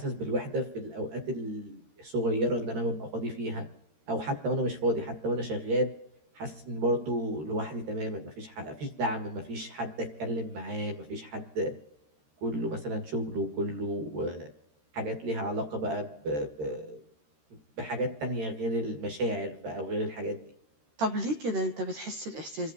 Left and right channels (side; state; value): left; late; 13 ms